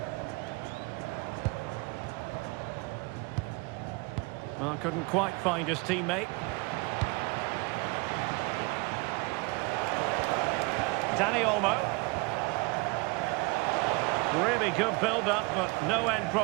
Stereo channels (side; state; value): left; quieter; 27.0 dB